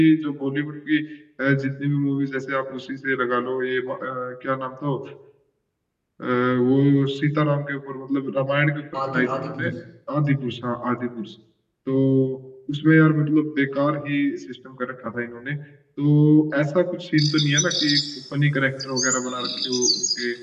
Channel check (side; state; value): both; identical; correlation 1.00